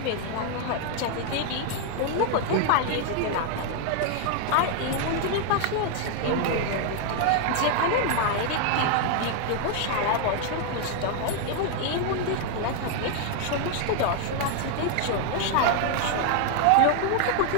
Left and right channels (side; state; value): both; different; correlation 0.00